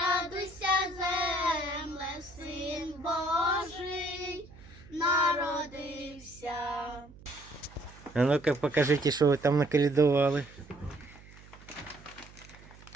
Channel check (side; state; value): right; noise; hum, 21 dB below the sound